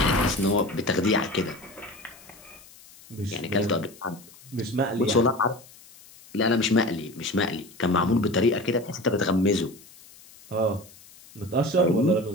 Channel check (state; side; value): noise; left; hiss, 23 dB below the sound